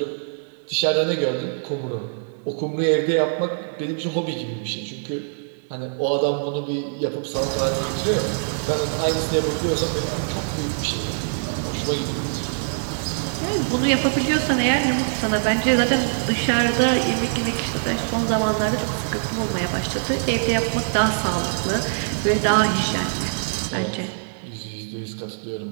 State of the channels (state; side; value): silent; left; digital silence